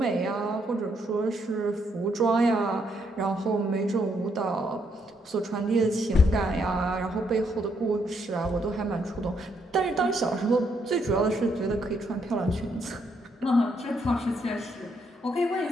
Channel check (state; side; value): normal; both; correlation 0.74